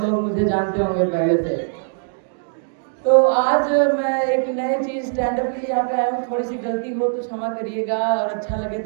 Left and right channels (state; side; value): silent; left; digital silence